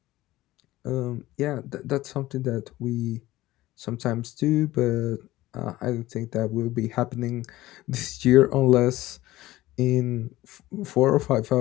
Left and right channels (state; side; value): quieter; right; 16.9 dB